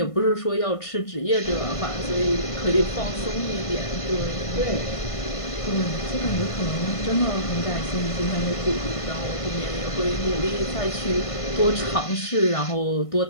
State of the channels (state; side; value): late; right; 1.5 ms